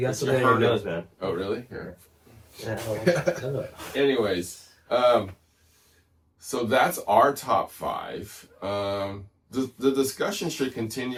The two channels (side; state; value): both; identical; correlation 1.00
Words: got something in your nose, man. Oh, really? Here. Yeah. Anyways, so that's our top 5. The discussion should